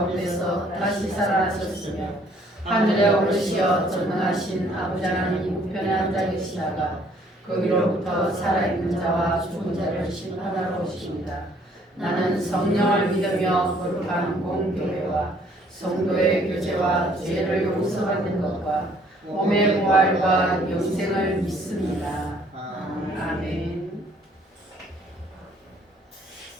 다시 살아나셨으며 하늘에 오르시어 전능하신 아버지 하나님 우편에 앉아 계시다가 거기로부터 살아있는 자와 죽은 자를 심판하러 오십니다. 나는 성령을 믿으며 거룩한 공교회와 성도의 교제와 죄를 용서받는 것과 몸의 부활과 영생을 믿습니다. 아멘.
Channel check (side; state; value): both; normal; correlation 0.62